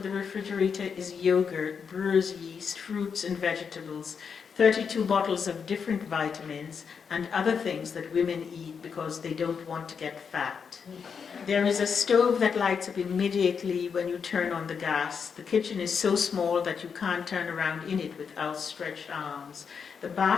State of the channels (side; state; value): right; quieter; 6.3 dB